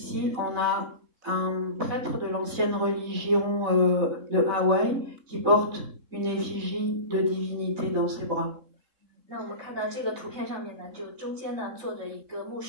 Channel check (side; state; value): left; late; 3.7 ms